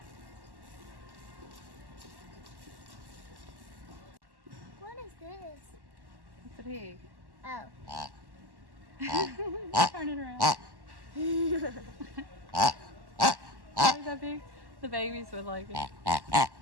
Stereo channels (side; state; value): left; late; 1.1 ms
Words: What is this? It's a pig. Oh. Turn it around. Is that big? The babies would like it.